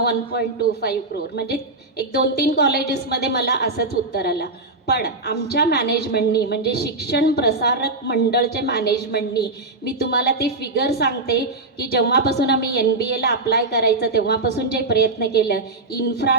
1.25 करोड, म्हणजे 1-2-3 कॉलेजेसमध्ये मला असंच उत्तर आलं. पण आमच्या मॅनेजमेंटनी म्हणजे शिक्षण प्रसारक मंडळच्या मॅनेजमेंटनी मी तुम्हाला ते फिगर सांगते की जेव्हापासून आम्ही MBAला अप्लाय करायचं तेव्हापासून जे प्रयत्न केलं,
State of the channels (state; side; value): quieter; left; 3.2 dB